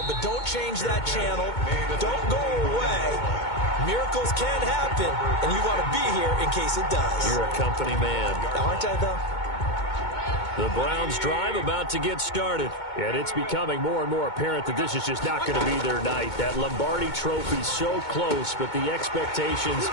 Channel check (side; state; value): right; late; 2.2 ms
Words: but don't change that channel. Don't go away. Miracles can happen, and you want to be here in case it does. You're a company man. Aren't I, though? The Browns drive about to get started. And it's becoming more and more apparent that this is just not going to be their night. That Lombardi trophy so close, but the expectations